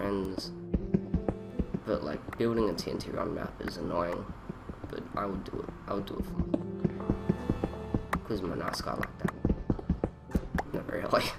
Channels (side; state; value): both; identical; correlation 1.00